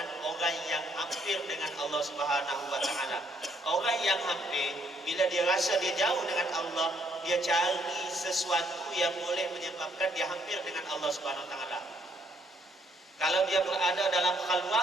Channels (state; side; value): normal; both; correlation 0.69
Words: orang yang hampir dengan Allah Subhanahu wa taala. Orang yang hampir, bila dia rasa dia jauh dengan Allah, dia cari sesuatu yang boleh menyebabkan dia hampir dengan Allah Subhanahu wa taala. Kalau dia berada dalam